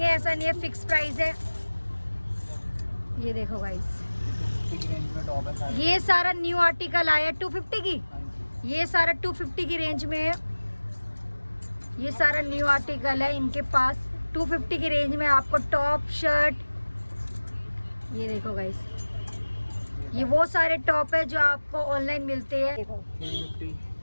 ऐसा नहीं है फिक्स प्राइस है। ये देखो गाइस ये सारा न्यू आर्टिकल आया 250 की, ये सारा 250 की रेंज में है। ये सारा न्यू आर्टिकल है इनके पास 250 की रेंज में आपको टॉप शर्ट। ये देखो गाइस ये वो सारे टॉप है जो आपको ऑनलाइन मिलते हैं। देखो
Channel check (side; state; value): both; inverted; correlation -1.00